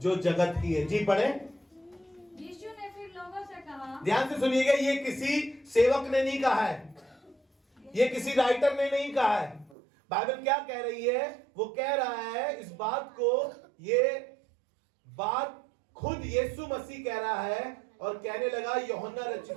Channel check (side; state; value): left; drops out; at 9.8 s